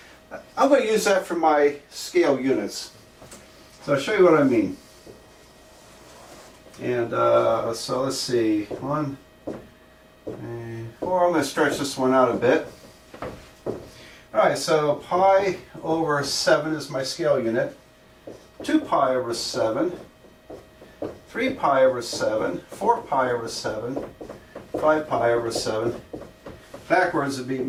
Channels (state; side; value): identical; both; correlation 1.00